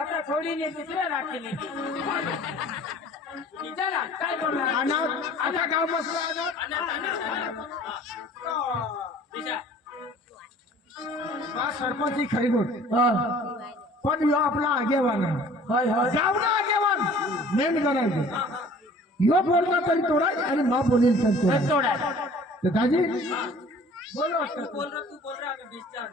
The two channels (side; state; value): both; normal; correlation 0.50